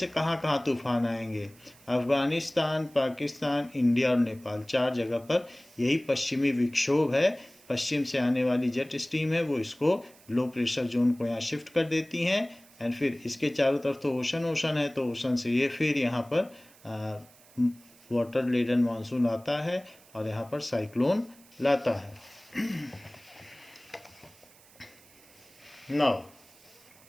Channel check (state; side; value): noise; right; hiss, 26 dB below the sound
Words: कहाँ कहाँ तूफान आएंगे, अफ़गानिस्तान, पाकिस्तान, इंडिया और नेपाल, 4 जगह पर यही पश्चिमी विक्षोभ है. पश्चिम से आने वाली जेट स्ट्रीम है, वो इसको लो प्रेशर जोन को यहाँ शिफ्ट कर देती हैं. एंड फिर इसके चारों तरफ तो ओशन है, तो ओशन से ये फिर यहाँ पर वाटर लेडन मानसून आता है और यहाँ पर साइक्लोन लाता है. Now